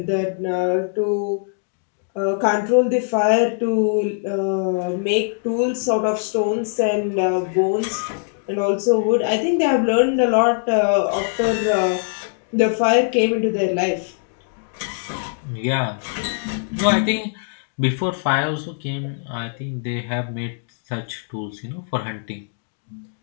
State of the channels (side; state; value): right; silent; digital silence